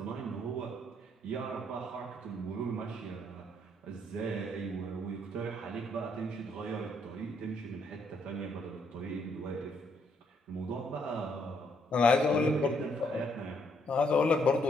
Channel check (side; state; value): both; normal; correlation 0.71